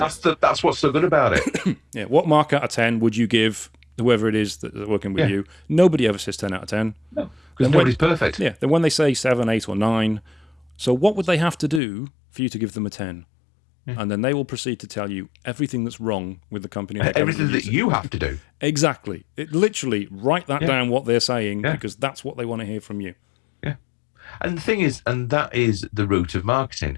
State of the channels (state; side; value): drops out; right; at 11.8 s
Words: what's so good about it. Yeah. What mark out of 10 would you give whoever it is that's working with you? Nobody ever says 10 out of 10. No, because nobody's perfect. Yeah. Then when they say 7, 8, or 9, so what would they have to do for you to give them a 10? And then they will proceed to tell you everything that's wrong with the company. Everything that you have to do. Exactly. Literally, write that down, what they're saying, because that's what they want to hear from you. Yeah. And the thing is, and that is the root of